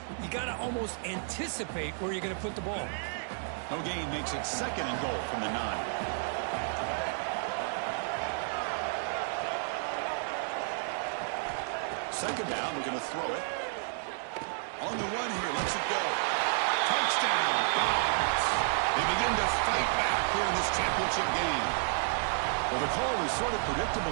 You got to almost anticipate where you're going to put the ball. No gain makes it 2nd and goal from the 9. Second down. We're going to throw it. On the run here, lets it go. Touchdown, Dogs. They begin to fight back here in this championship game. Well, the call was sort of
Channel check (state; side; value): silent; left; digital silence